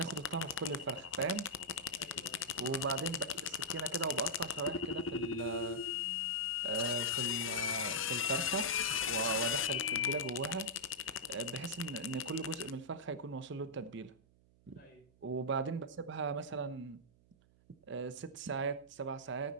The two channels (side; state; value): right; noise; hum, 29 dB below the sound